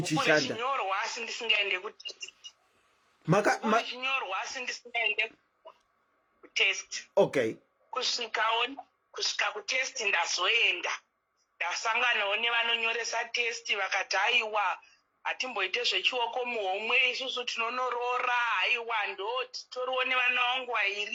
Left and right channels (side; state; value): both; identical; correlation 1.00